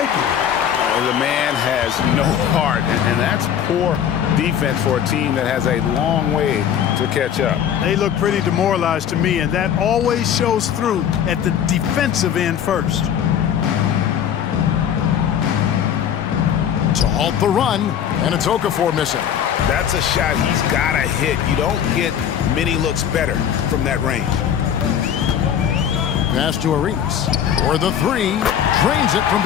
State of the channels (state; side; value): quieter; right; 9.0 dB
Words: it. The man has no heart, and that's poor defense for a team that has a long way to catch up. They look pretty demoralized to me, and that always shows through at the defensive end first. To halt the run, and it's Okafor missing. That's a shot he's got to hit. You don't get many looks better from that range. Pass to Arenas. For the 3. Drains it from